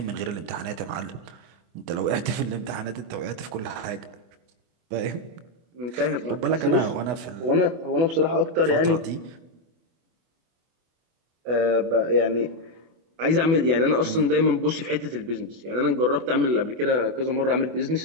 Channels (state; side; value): late; left; 24 ms